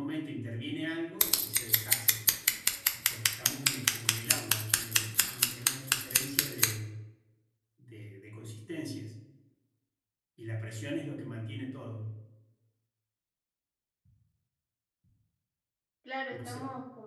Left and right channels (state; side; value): identical; both; correlation 1.00